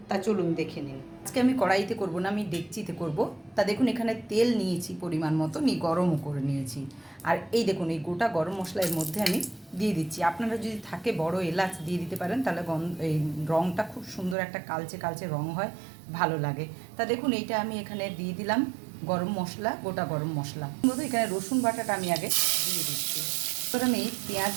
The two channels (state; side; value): drops out; left; at 14.4 s